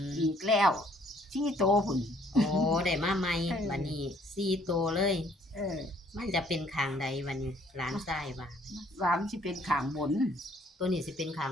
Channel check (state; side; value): normal; both; correlation 0.62